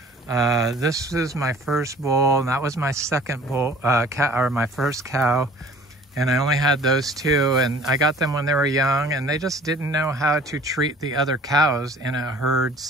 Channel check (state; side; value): normal; both; correlation 0.50